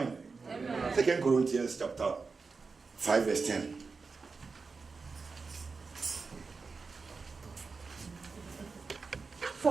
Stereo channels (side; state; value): left; quieter; 4.5 dB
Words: 2 Corinthians chapter 5 verse 10.